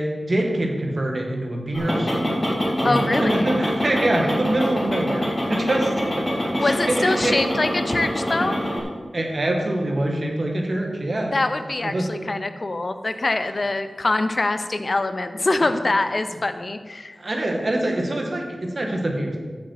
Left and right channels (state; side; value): normal; both; correlation 0.96